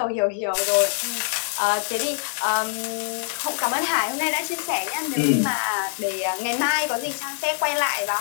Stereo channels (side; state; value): right; silent; digital silence